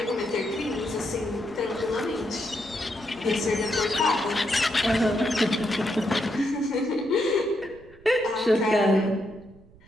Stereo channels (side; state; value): right; noise; rumble, 25 dB below the sound